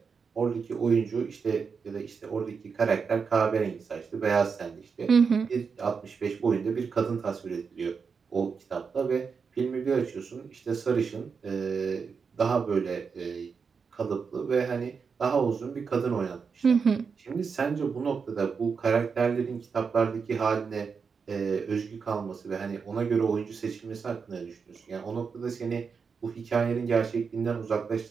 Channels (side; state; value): left; quieter; 5.6 dB